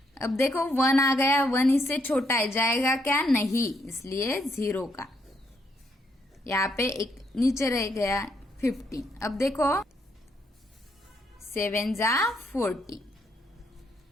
अब देखो 1 आ गया, 1 इससे छोटा है, जाएगा क्या, नहीं, इसलिए 0 का यहाँ पे एक नीचे रह गया 15। अब देखो 7 जा 40,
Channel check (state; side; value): normal; both; correlation 0.74